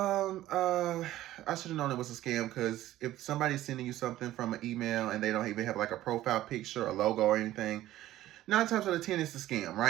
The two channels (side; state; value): left; quieter; 14.6 dB